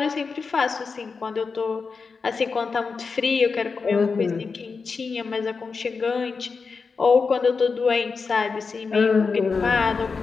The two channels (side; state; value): right; quieter; 4.9 dB